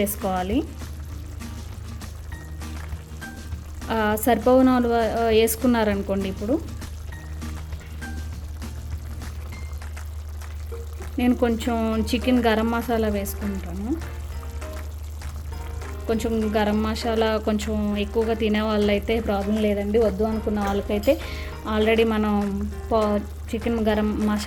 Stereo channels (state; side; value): identical; both; correlation 1.00